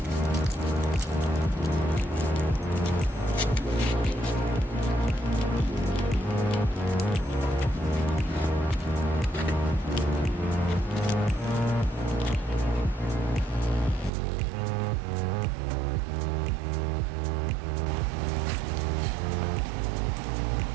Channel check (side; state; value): left; drops out; at 14.1 s